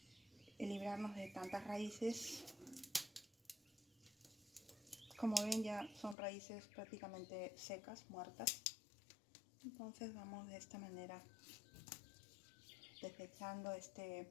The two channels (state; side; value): drops out; right; at 6.2 s